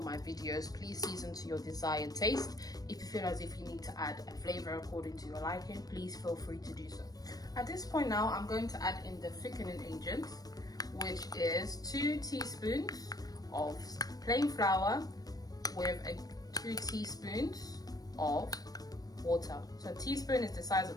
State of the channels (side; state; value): right; late; 0.18 ms